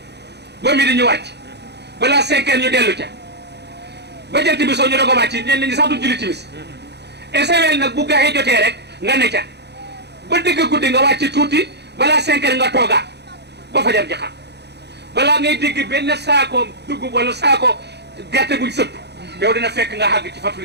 ba mi di ñu wàcc balaa 5 heures ñu dellu ca ba jant bi soo ñu doog a wàcc ñenn ñi sax du julli timis esewel nag bu gaxee jotee rek nga ne ca ba dëgg guddi nga wàcc tuuti balaa 5 heures nga toogaat ba fajar ji xam balaa ngay dégg benn saako dugub wala saako gerte buñ sëpp yow dina fekk nga xàgg ci fatul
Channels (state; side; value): late; left; 0.49 ms